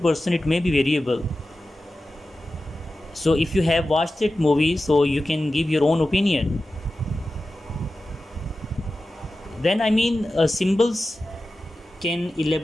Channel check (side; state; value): both; normal; correlation 0.94